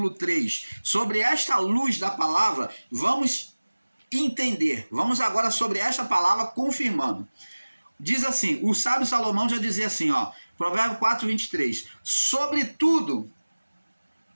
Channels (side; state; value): both; inverted; correlation -1.00